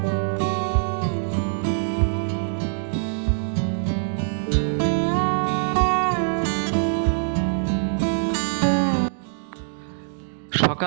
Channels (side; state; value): left; silent; digital silence